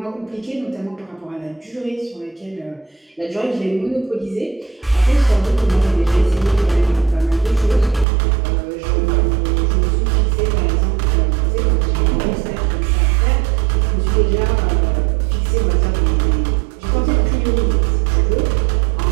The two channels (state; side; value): drops out; left; at 8.1 s